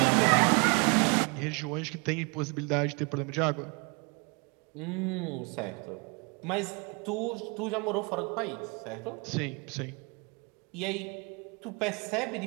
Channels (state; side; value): quieter; left; 31.8 dB